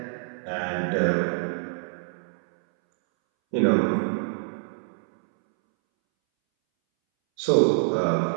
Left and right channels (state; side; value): silent; left; 61 dB below the other